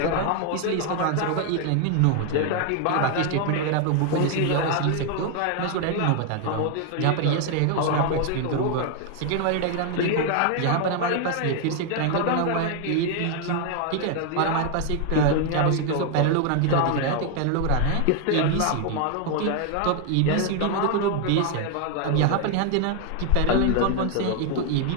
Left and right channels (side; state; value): both; different; correlation 0.00